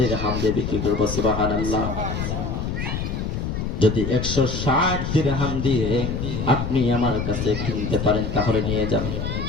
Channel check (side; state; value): left; noise; rumble, 3 dB below the sound